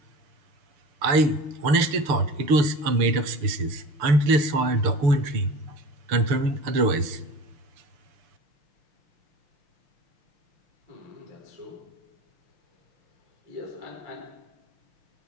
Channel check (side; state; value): left; late; 6.8 ms